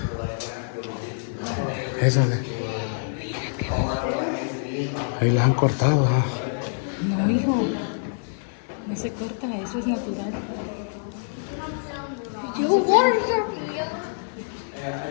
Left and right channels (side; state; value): right; silent; digital silence